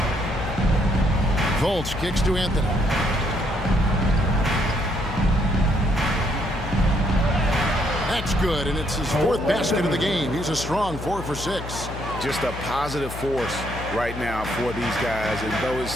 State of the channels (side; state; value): left; noise; hum, 10 dB below the sound